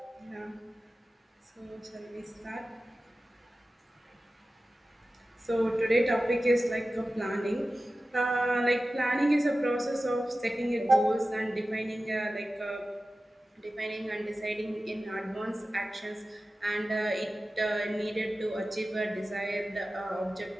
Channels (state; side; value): normal; both; correlation 0.95